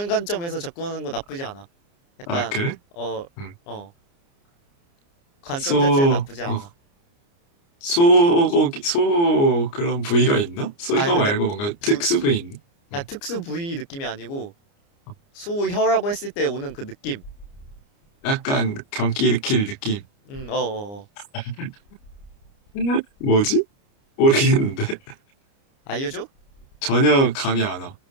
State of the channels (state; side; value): late; right; 29 ms